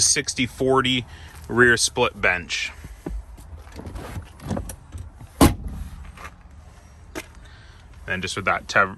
rear split bench. And just with that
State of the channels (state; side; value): identical; both; correlation 1.00